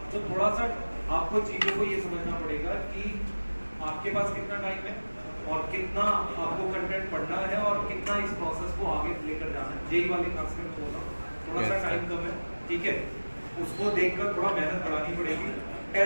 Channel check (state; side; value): inverted; both; correlation -1.00